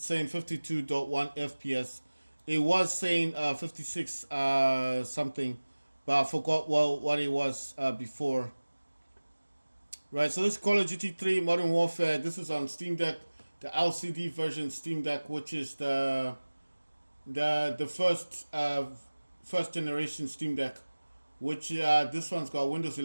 saying 52.1 FPS. It was saying 56 something, but I forgot what it was before. Right, so this is Call of Duty 3 Modern Warfare. This is on Steam Deck, the LCD version Steam Deck, which is the first generation Steam Deck, which this one's got Windows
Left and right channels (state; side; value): inverted; both; correlation -1.00